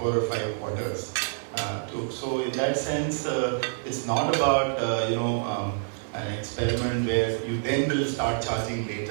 or 5 quarters. So in that sense, it's not about an experiment where you then will start charging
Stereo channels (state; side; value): silent; left; digital silence